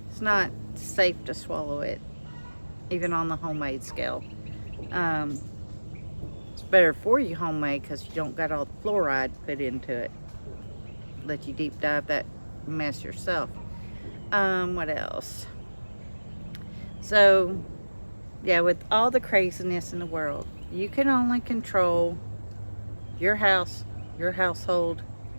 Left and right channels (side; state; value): both; inverted; correlation -1.00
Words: It's not safe to swallow it, even on the homemade scale. It's better for you homemade because you don't got all the fluoride put into it. Let you deep dive that mess yourself. What else? So yeah, with all the craziness in the world, you can only control your house, your household,